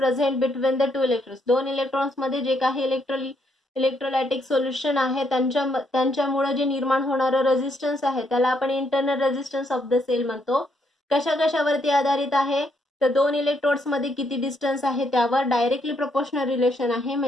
between the two electrons. दोन इलेक्ट्रॉन्स मध्ये जे काही इलेक्ट्रोलायटिक सोल्युशन आहे त्यांच्यामुळे जे निर्माण होणारं रेजिस्टन्स आहे त्याला आपण internal resistance of the cell म्हणतो. कशा कशावरती आधारित आहे, तर दोन इलेक्ट्रोड्स मध्ये किती डिस्टन्स आहे त्यावर डायरेक्टली प्रोपोर्शनल रिलेशन आहे.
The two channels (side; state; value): both; normal; correlation 0.74